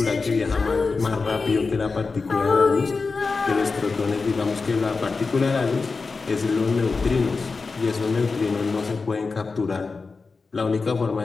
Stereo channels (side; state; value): right; quieter; 4.3 dB